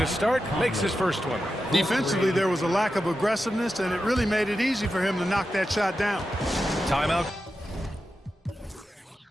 start, makes his first one. Defensively, there was a lack of aggressiveness, and it really made it easy for him to knock that shot down. Timeout.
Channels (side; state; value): both; normal; correlation 0.90